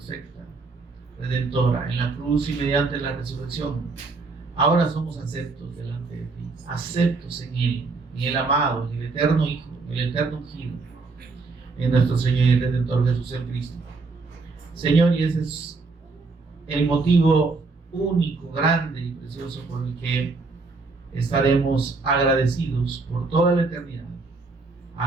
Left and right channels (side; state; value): left; quieter; 3.9 dB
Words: redentora, en la cruz y mediante la resurrección, ahora somos aceptos delante de ti, aceptos en Él, en el amado, en el eterno Hijo, en el eterno ungido, en nuestro Señor y Redentor Jesús el Cristo. Señor, y ese es el motivo único, grande y precioso por el que estaremos agradecidos por toda la eternidad,